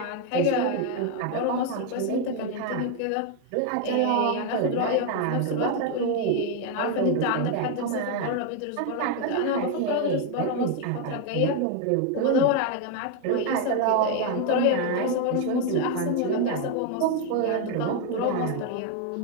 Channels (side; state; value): both; different; correlation 0.01